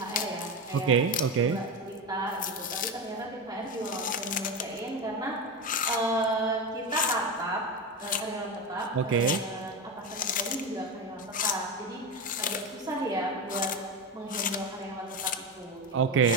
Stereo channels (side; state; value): both; normal; correlation 0.17